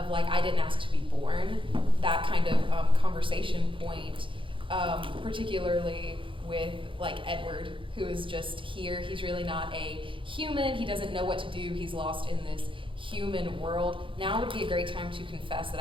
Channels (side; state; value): left; late; 0.25 ms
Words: like, I didn't ask to be born, that kind of conversation point, particularly with like Edward, who is just here. He's really not a human. He doesn't know what to do. He's lost in this human world. Now would be a great time to confess that